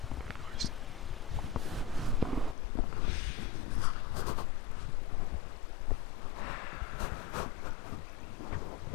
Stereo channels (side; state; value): right; drops out; at 2.6 s